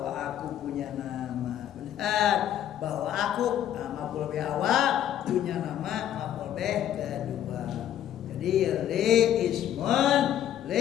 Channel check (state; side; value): quieter; right; 10.9 dB